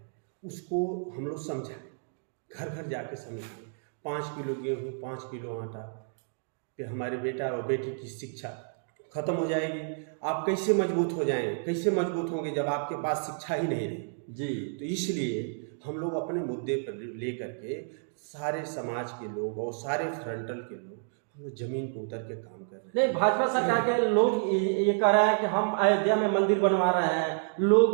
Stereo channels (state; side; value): silent; left; digital silence